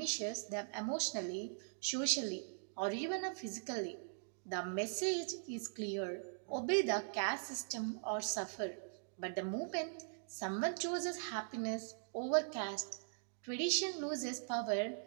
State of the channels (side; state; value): left; silent; digital silence